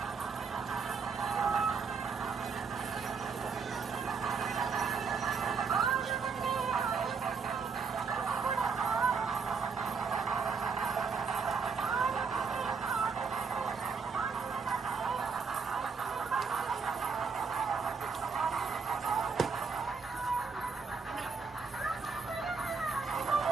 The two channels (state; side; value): quieter; left; 5.2 dB